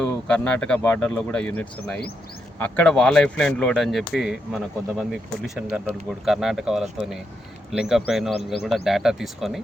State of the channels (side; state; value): both; normal; correlation 0.82